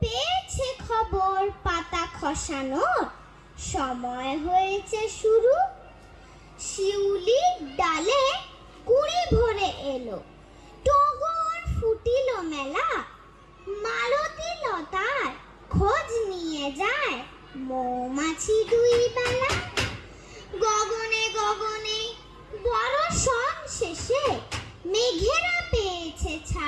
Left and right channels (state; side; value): identical; both; correlation 1.00